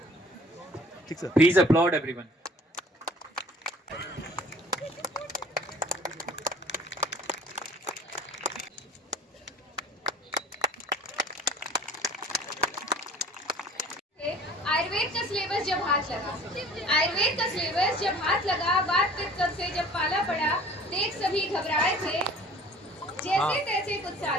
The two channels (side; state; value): both; normal; correlation 0.48